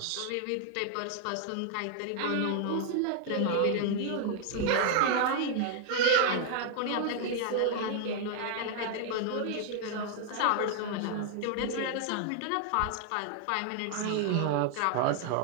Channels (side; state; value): both; different; correlation 0.00